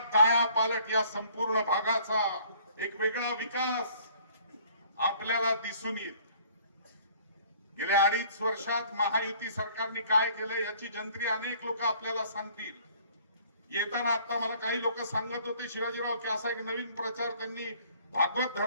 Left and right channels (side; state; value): both; inverted; correlation -0.56